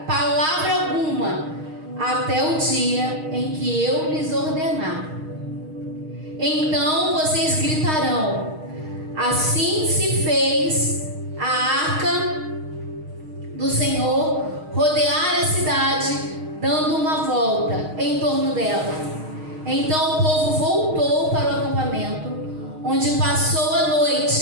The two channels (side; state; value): left; late; 6.4 ms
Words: palavra alguma, até o dia em que eu lhes ordenar. Então vocês gritarão: assim se fez a arca do Senhor rodear a cidade, dando uma volta em torno dela. Então o povo voltou para o acampamento, onde passou a